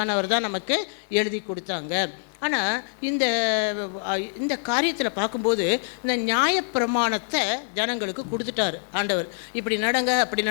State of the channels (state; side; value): silent; right; digital silence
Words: தான் நமக்கு எழுதி கொடுத்தாங்க. ஆனால் இந்த காரியத்தில் பார்க்கும்போது இந்த நியாயப்பிரமாணத்தை ஜனங்களுக்கு கொடுத்துட்டார் ஆண்டவர். இப்படி நடங்க அப்படி